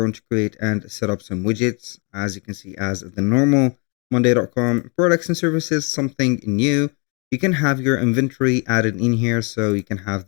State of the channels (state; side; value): quieter; right; 33.8 dB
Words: to create and set up some widgets, as you can see, as the normal Monday.com products and services, something new. You can have your inventory added in here, so you can have